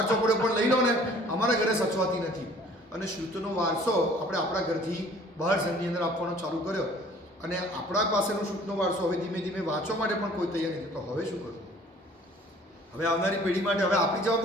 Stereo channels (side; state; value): both; normal; correlation 0.53